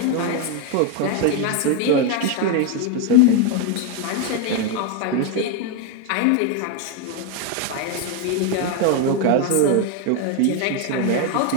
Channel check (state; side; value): different; both; correlation 0.01